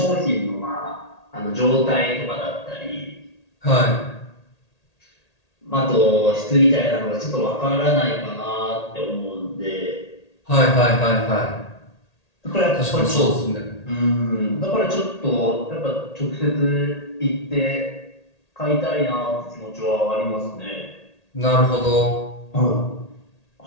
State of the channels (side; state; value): right; late; 1.8 ms